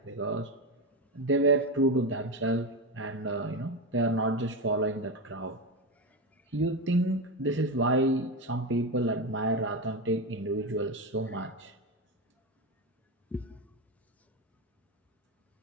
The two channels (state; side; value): normal; both; correlation 0.15